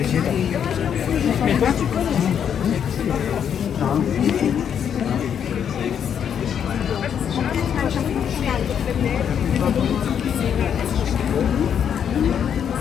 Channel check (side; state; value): right; quieter; 8.3 dB